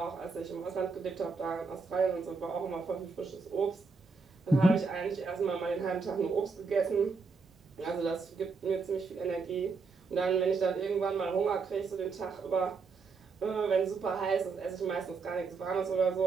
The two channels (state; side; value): quieter; left; 4.6 dB